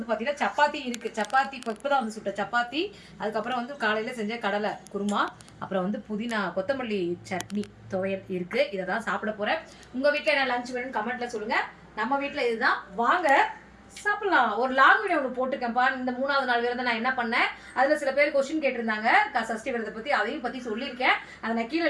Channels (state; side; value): identical; both; correlation 1.00